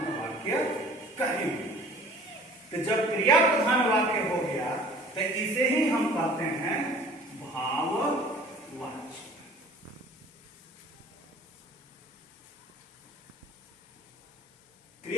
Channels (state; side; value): normal; both; correlation 0.49